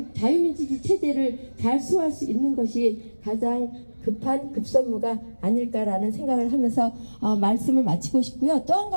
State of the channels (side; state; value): both; inverted; correlation -1.00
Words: 자유민주주의 체제를 잘 수호할 수 있는 것이 가장 급한 급선무가 아닐까라는 생각을 하면서 말씀을 마치고 싶고요. 또 한